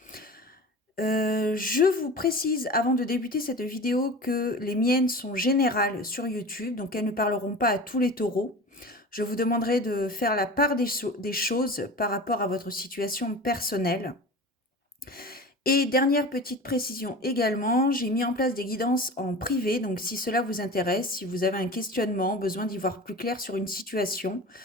Je vous précise avant de débuter cette vidéo que les miennes sont générales sur YouTube, donc elles ne parleront pas à tous les taureaux. Je vous demanderai de faire la part des choses par rapport à votre situation personnelle. Et dernière petite précision également, j'ai mis en place des guidances en privé, donc si cela vous intéresse, si vous avez un questionnement, besoin d'y voir plus clair sur une situation,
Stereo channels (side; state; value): both; normal; correlation 0.35